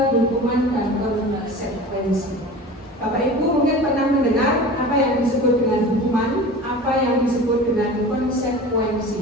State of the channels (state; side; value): normal; both; correlation 0.37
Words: hukuman dan konsekuensi. Bapak Ibu mungkin pernah mendengar apa yang disebut dengan hukuman, apa yang disebut dengan